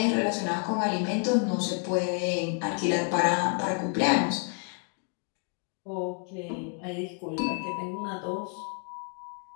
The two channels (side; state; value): right; quieter; 38.8 dB